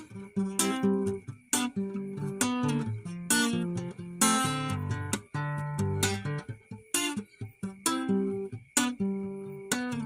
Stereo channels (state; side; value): identical; both; correlation 1.00